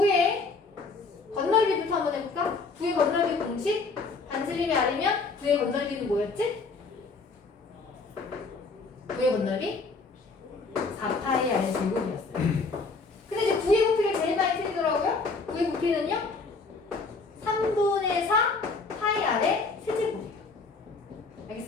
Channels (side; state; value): right; quieter; 4.1 dB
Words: 건널비부터 한번 해볼까? 9의 건널비 공식 반지름이 아니면 9의 건널비는 뭐였지? 9의 건널비 4파이 r 제곱이었어요. 근데 이제 9의 부피를 제일 많이 틀리더라고요. 9의 부피는요? 3분의 4 파이 r의 세제곱이에요.